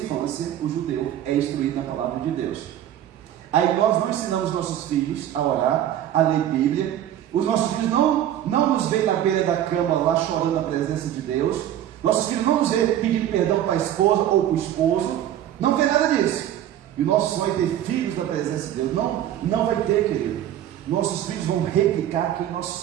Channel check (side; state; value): left; quieter; 11.5 dB